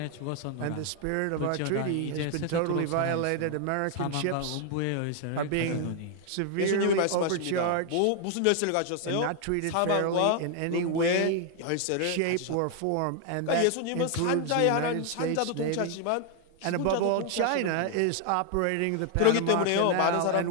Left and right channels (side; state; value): both; different; correlation 0.00